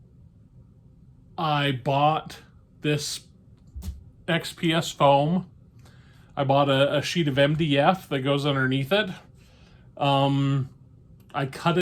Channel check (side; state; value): both; identical; correlation 1.00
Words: I bought this XPS foam. I bought a sheet of MDF that goes underneath it. I cut